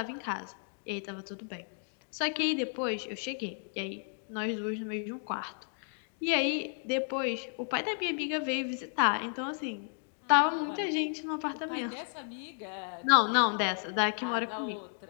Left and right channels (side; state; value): right; silent; 56 dB below the other